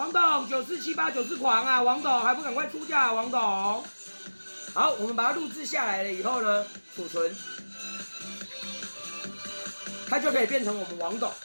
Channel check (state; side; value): inverted; both; correlation -1.00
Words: 狂啊，王董还不赶快出价，王董。好，我们把它录制下来了以后呢，储存。它就可以变成我们王董，